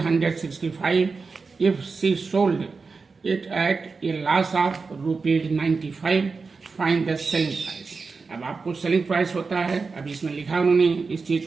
if she sold it at a loss of ₹95, find the selling price। अब आपको सेलिंग प्राइस होता है, अब इसमें लिखा उन्होंने इस चीज़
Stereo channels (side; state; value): left; quieter; 4.5 dB